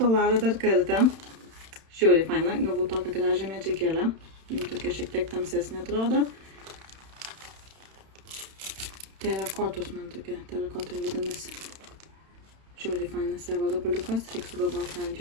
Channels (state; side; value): late; left; 31 ms